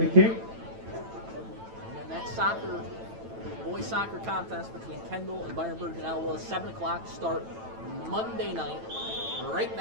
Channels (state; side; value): late; left; 9.1 ms